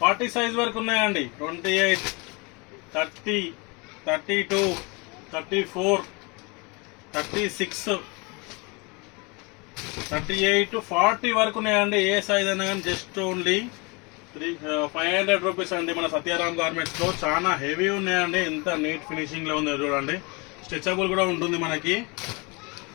40 సైజ్ వరకు ఉన్నాయండి. 28, 30, 32, 34, 36, 38 to 40 వరకు ఉన్నాయండి. ఏ సైజ్ అయినా కానీ జస్ట్ ఓన్లీ 500 రూపీస్ అండి. మన సత్యారాం గార్మెంట్స్ లో చాలా హెవీ ఉన్నాయండి. ఎంత నీట్ ఫినిషింగ్ లో ఉంది చూడండి. స్ట్రెచబుల్ కూడా ఉంటుంది మనకి.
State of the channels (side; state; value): right; quieter; 28.7 dB